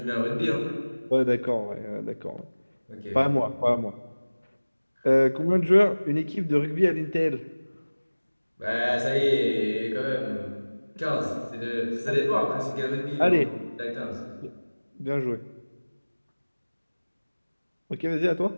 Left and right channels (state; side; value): inverted; both; correlation -1.00